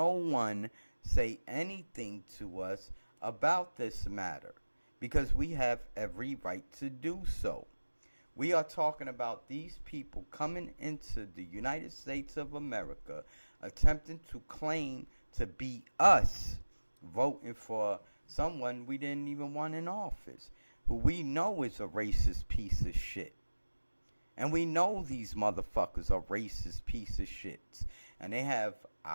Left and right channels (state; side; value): inverted; both; correlation -1.00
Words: one say anything to us about this matter, because we have every right to do so. We are talking about these people coming into the United States of America, attempting to claim to be us, voting for someone we didn't even want in office, who we know is a racist piece of shit. And we know these motherfuckers are racist piece of shits. And they have